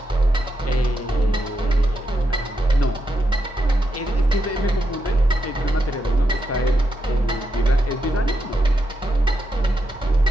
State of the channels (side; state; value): both; normal; correlation 0.83